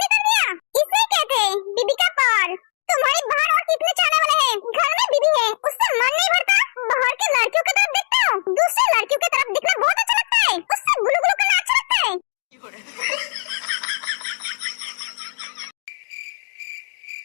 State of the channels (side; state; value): right; silent; digital silence